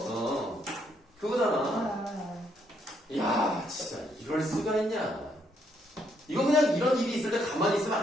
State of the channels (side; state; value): both; normal; correlation 0.72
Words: 그거잖아. 이야, 진짜 이럴 수가 있냐. 이거 그냥 이런 일이 있을 때 가만히 있으면